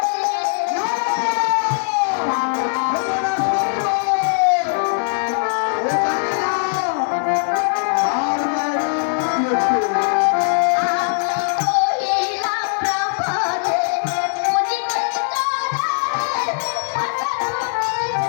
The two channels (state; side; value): silent; right; digital silence